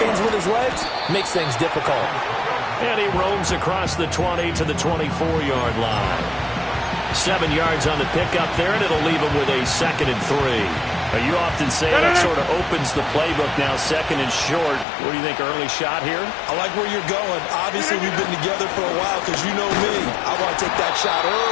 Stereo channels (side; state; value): right; drops out; at 14.9 s